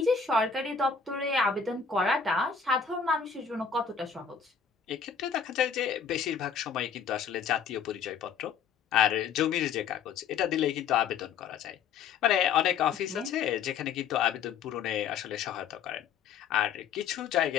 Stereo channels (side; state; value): right; quieter; 6.7 dB